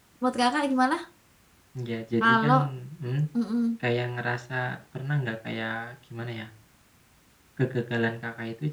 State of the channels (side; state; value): both; identical; correlation 1.00